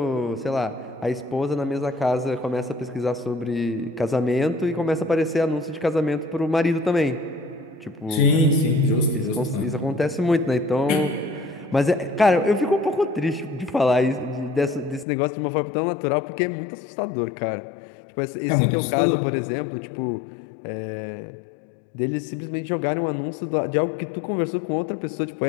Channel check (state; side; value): drops out; right; at 15.1 s